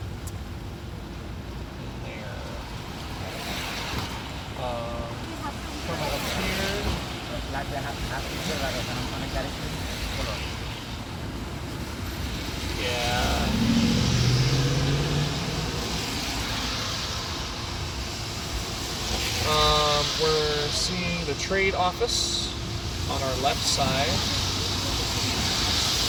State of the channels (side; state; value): both; identical; correlation 1.00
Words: There. Coming up here. Like they have picture like on a character. Yeah. We're seeing the trade office on our left side.